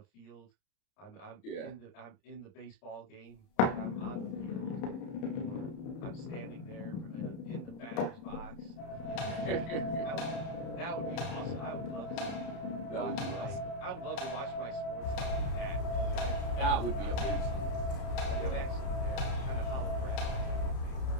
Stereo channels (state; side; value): late; right; 30 ms